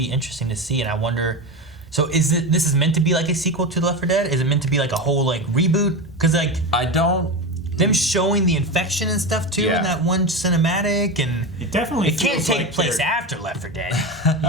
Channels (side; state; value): both; normal; correlation 0.20